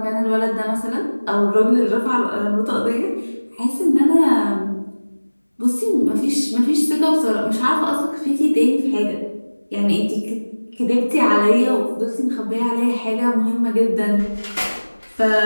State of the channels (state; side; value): inverted; both; correlation -1.00